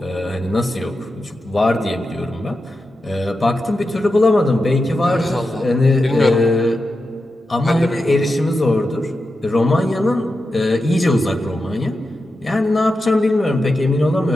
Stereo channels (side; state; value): both; normal; correlation 0.90